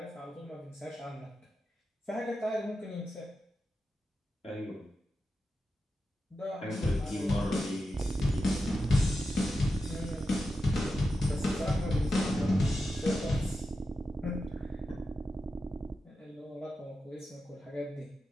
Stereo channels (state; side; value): normal; both; correlation 0.89